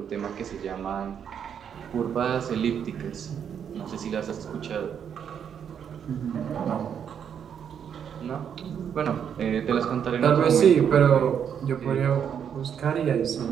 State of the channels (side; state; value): left; quieter; 8.1 dB